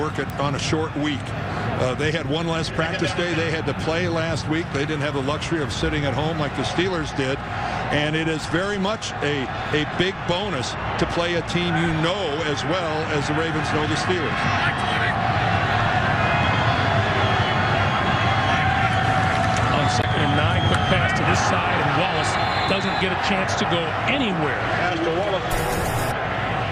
it on a short week. They had one less practice day. They had to play last week. They didn't have the luxury of sitting at home like the Steelers did. And it is very much a big bonus to play a team you know as well as the Ravens know the Steelers. On 2nd and 9, quick pass to this side, and Wallace doesn't get a chance to go anywhere.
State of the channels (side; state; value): both; identical; correlation 1.00